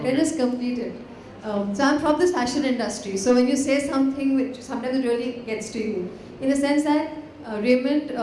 us complete it. So I'm from this fashion industry, so when you say something which sometimes it really gets to you, in the sense that Raymond,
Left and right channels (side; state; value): both; identical; correlation 1.00